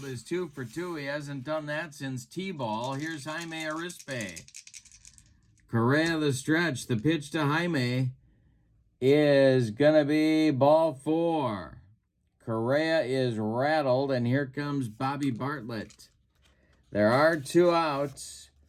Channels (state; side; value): identical; both; correlation 1.00